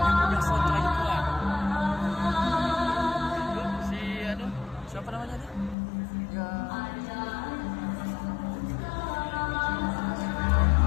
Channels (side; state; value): right; drops out; at 5.8 s